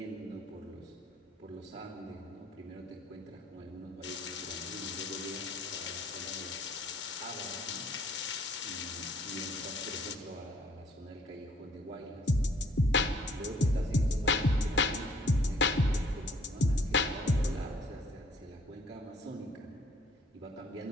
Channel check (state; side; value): normal; both; correlation 0.61